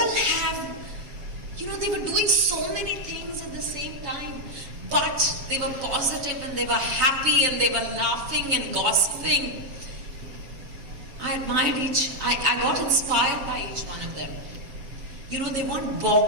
have, they were doing so many things at the same time, but they were positive and they were happy and they were laughing and gossiping. I admired I got inspired by each one of them. They weren't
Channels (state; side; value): late; left; 7.1 ms